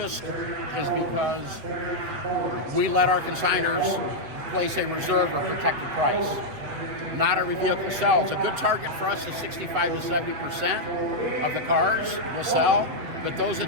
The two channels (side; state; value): left; late; 7.9 ms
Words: is because we let our consigners place a reserve or protected price. Not every vehicle sells. A good target for us is 65 to 70% of the cars will sell, but those